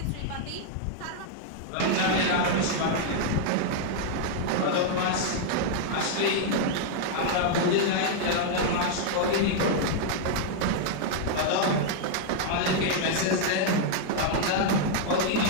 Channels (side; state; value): both; different; correlation 0.00